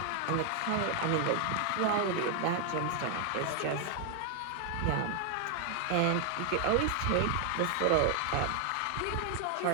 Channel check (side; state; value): both; different; correlation 0.00